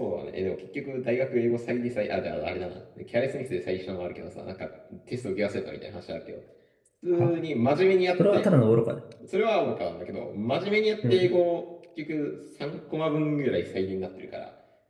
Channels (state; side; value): identical; both; correlation 1.00